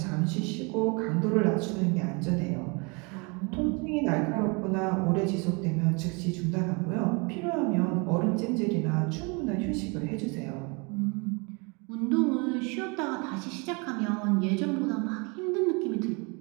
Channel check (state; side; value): quieter; left; 30.8 dB